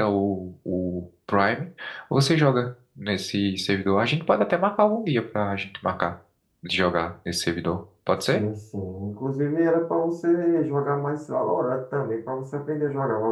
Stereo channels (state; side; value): identical; both; correlation 1.00